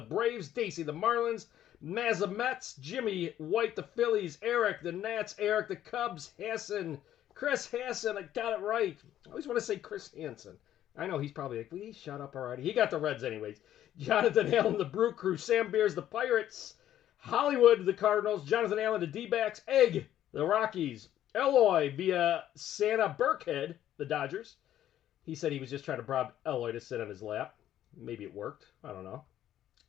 Braves, Dacey, the Marlins, Mazza Mets, Jimmy White, the Phillies, Eric, the Nats, Eric, the Cubs, Hassan, Chris Hassan, I got it right. I always want to say Chris Hansen. I know he's probably like, will you shut up already? He got the Reds anyways. Jonathan Allen, the Brew Crew, Sam Beers, the Pirates, Hollywood, the Cardinals, Jonathan Allen, the D-backs, Egg, the Rockies, Eloy via Santa Burkhead, the Dodgers. He said he was just trying to bribe Eloy to sit on his lap. Maybe it worked. I don't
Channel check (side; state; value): right; quieter; 11.8 dB